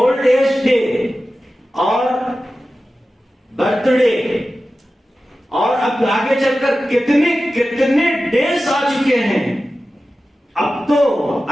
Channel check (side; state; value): both; normal; correlation 0.94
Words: ایج ڈے اور برتھ ڈے، اور اب آگے چل کر کتنے ڈیز آ چکے ہیں. اب تو